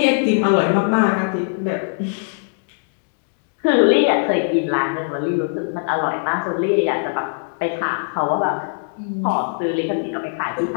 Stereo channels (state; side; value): silent; right; digital silence